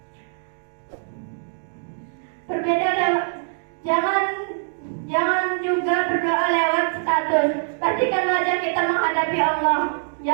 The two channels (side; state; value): left; silent; digital silence